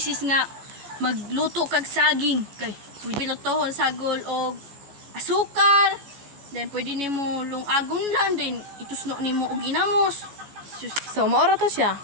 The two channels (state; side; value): late; left; 14 ms